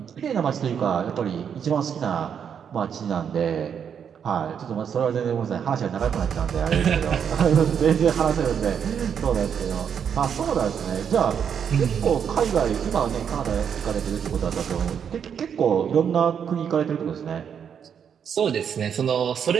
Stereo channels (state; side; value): quieter; left; 7.7 dB